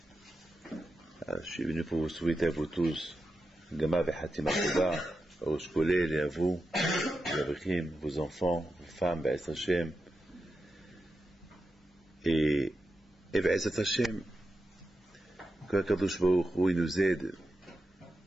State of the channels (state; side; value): normal; both; correlation 0.89